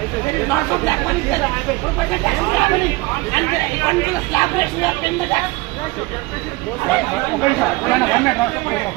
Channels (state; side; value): quieter; left; 22.5 dB